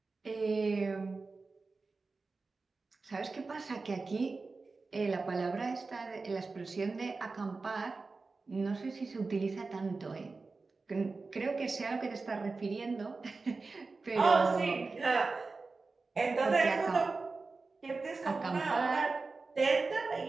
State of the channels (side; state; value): left; quieter; 4.0 dB